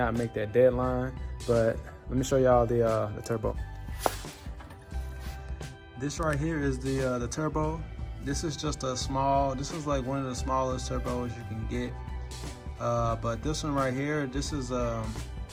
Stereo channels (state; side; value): identical; both; correlation 1.00